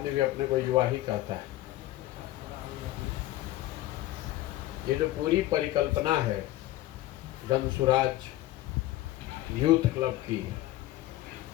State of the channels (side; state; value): right; quieter; 16.0 dB